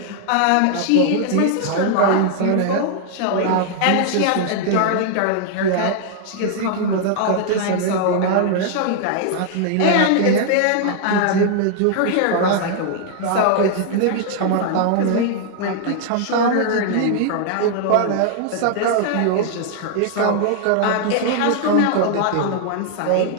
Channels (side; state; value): both; different; correlation 0.00